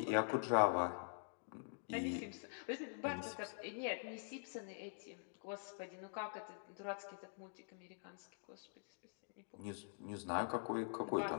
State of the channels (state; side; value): silent; right; digital silence